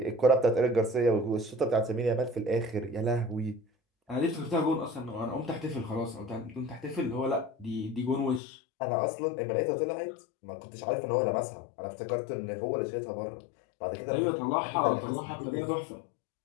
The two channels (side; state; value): right; drops out; at 8.4 s